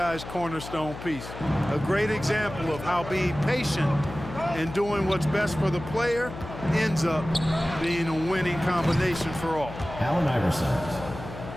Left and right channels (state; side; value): noise; left; hum, 11 dB below the sound